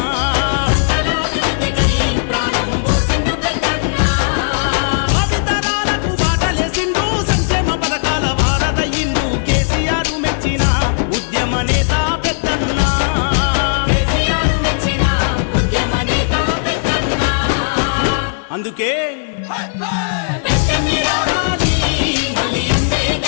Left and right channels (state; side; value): silent; right; digital silence